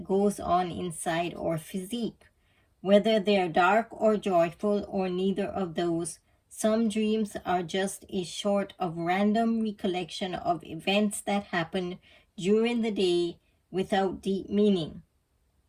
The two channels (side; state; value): both; identical; correlation 1.00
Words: goes on inside our physique. Whether they're dark or joyful or neither of those, some dreams are just a sort of random recollection of events that happen during the day without deep meaning.